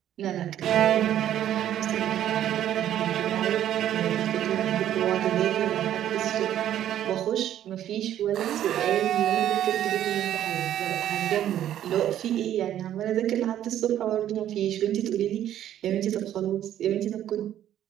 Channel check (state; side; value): quieter; left; 11.4 dB